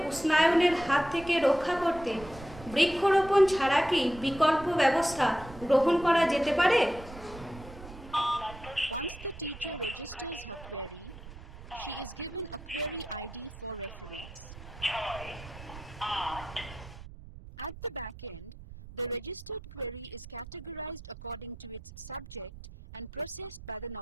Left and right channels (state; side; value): noise; right; rumble, 15 dB below the sound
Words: উষ্ণায়নের হাত থেকে রক্ষা করতে বৃক্ষরোপণ ছাড়া কি বিকল্প ব্যবস্থা গ্রহণ করা যেতে পারে? At the back end, the registered query is categorized according to its subject and processed by the